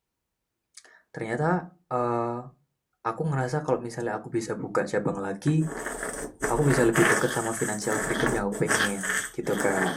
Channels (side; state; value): both; identical; correlation 1.00